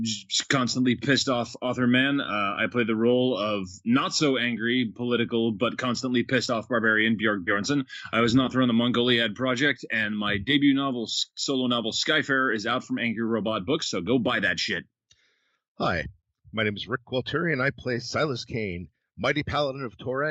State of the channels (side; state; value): both; identical; correlation 1.00